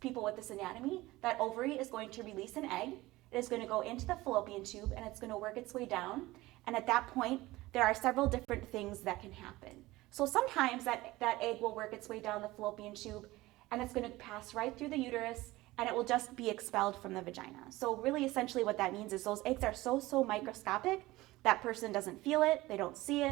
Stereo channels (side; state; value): left; quieter; 18.8 dB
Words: people with this anatomy, that ovary is going to release an egg. It is going to go into the fallopian tube and it's going to work its way down. And at that point, there are several different things that can happen. So sometimes that egg will work its way down the fallopian tube and it's going to pass right through the uterus and it will just be expelled from the vagina. So really essentially what that means is those eggs are so microscopic, that person doesn't feel it, they don't see